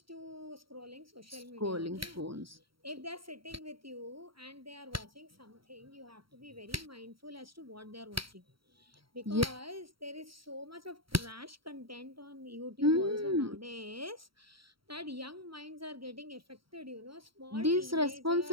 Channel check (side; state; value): left; late; 0.74 ms